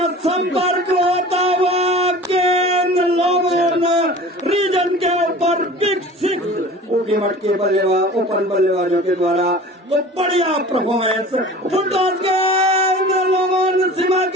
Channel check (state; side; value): normal; both; correlation 0.41